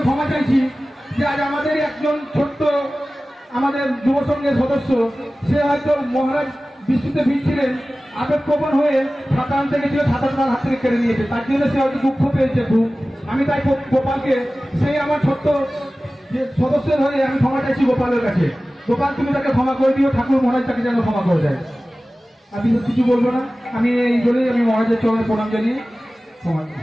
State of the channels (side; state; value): both; normal; correlation 0.96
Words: ক্ষমা চাইছি যে আজ আমাদের একজন ছোট্ট আমাদের যুব সংঘের সদস্য, সে হয়তো মহারাজ বৃষ্টিতে ভিজছিলেন, আবেগপ্রবণ হয়ে ছাতা আনতে গেছিল, ছাতা তার হাত থেকে কেড়ে নিয়েছে, তার জন্য সে হয়তো দুঃখ পেয়েছে খুব। আমি তাই গোপালকে, সেই আমার ছোট্ট যে সদস্যের হয়ে আমি ক্ষমা চাইছি গোপালের কাছে। গোপাল, তুমি তাকে ক্ষমা করে দিও, ঠাকুর মহারাজ তাকে যেন ক্ষমা করে দেয়। আমি কিছু বলবো না, আমি এই জন্যই আমি মহারাজের চরণে প্রণাম জানিয়ে ক্ষমা